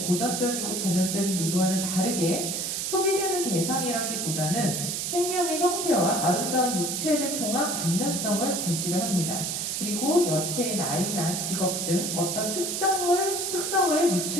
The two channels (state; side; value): noise; right; hiss, 2 dB below the sound